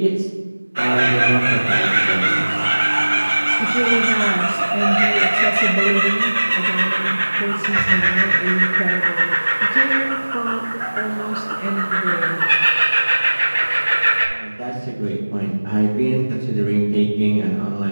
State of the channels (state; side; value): inverted; both; correlation -1.00